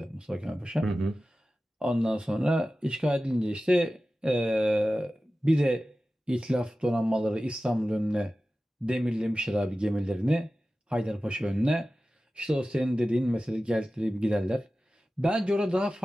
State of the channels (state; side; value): normal; both; correlation 0.95